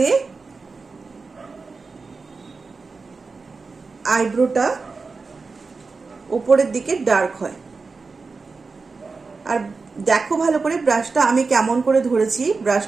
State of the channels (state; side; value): quieter; left; 4.3 dB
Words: আইব্রোটা ওপরের দিকে ডার্ক হয়। আর দেখো ভালো করে ব্রাশটা আমি কেমন করে ধরেছি,